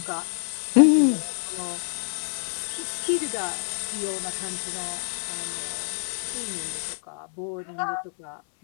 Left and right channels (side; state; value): right; silent; 60 dB below the other